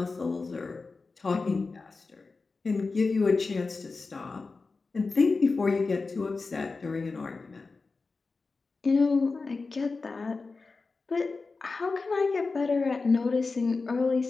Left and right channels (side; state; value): right; quieter; 4.0 dB